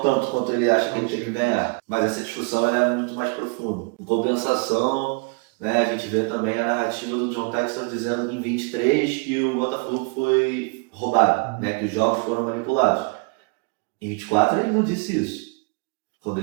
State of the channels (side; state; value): left; quieter; 30.5 dB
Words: tanto quanto ele acha que ele tem que ganhar. Mas essa discussão ela é muito mais profunda. Em compensação, né, a gente vê também a narrativa do John Textor dizendo em 23 que o Botafogo foi roubado, né, que os jogos foram manipulados. Em 24 ele não disse isso, quando